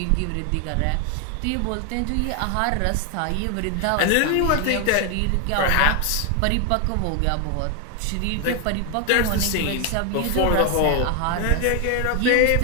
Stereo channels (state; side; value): different; both; correlation 0.01